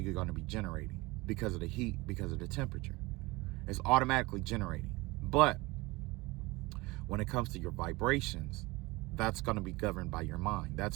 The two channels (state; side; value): quieter; left; 22.7 dB